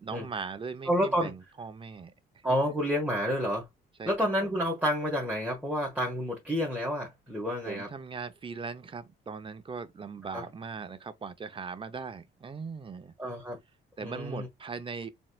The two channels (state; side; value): normal; both; correlation 0.59